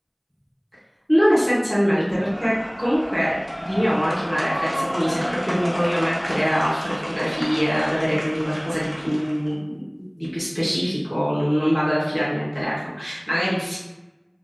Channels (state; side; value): identical; both; correlation 1.00